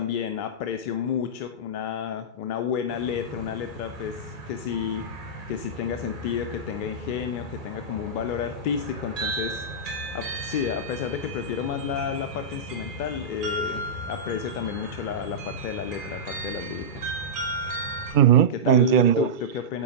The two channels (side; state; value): right; late; 2.3 ms